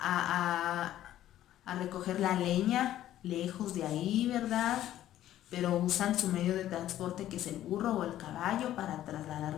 recoger la leña lejos de ahí, ¿verdad? Pero usan su medio de transporte, que es el burro o el caballo, para trasladar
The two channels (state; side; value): quieter; right; 12.8 dB